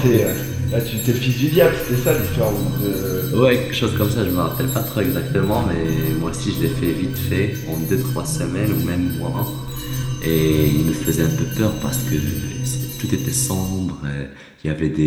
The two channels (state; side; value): identical; both; correlation 1.00